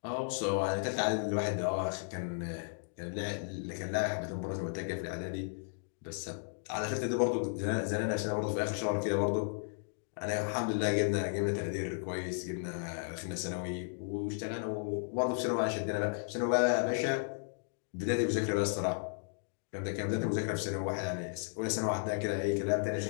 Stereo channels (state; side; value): silent; right; digital silence